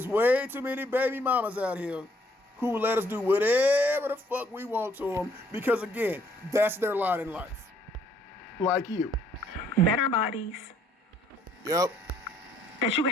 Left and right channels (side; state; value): both; normal; correlation 0.65